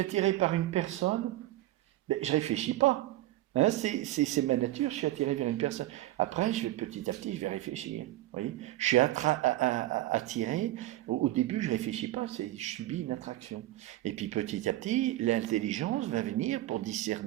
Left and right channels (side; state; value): left; quieter; 15.8 dB